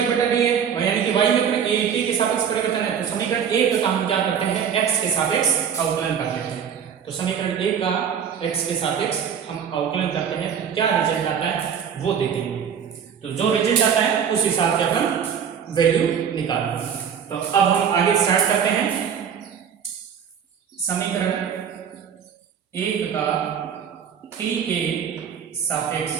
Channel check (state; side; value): quieter; left; 7.8 dB